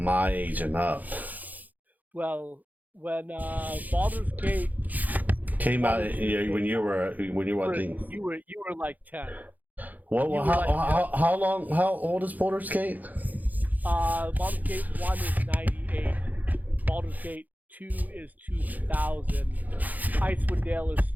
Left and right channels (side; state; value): left; late; 0.082 ms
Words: age and up. Well, when Baldur's Gate came out when you were I think you were like 10. Well, how old is Baldur's Gate? Baldur's Gate 1 is 98. Baldur's Gate 2 is 2000. Icewind Dale is